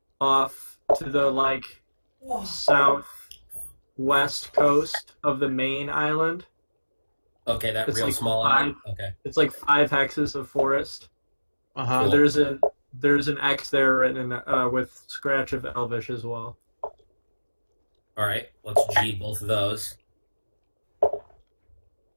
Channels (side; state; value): both; inverted; correlation -1.00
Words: off to the southwest coast of the main island. Okay, that It's real like small five- island. Okay. It's like 5 hexes of forest. Uh-huh. So there's an X there written with scratch of Elvish as well. All right, let's G both of those.